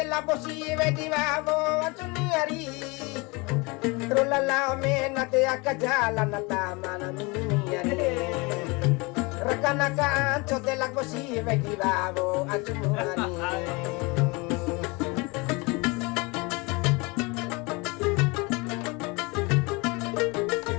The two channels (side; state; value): right; quieter; 26.9 dB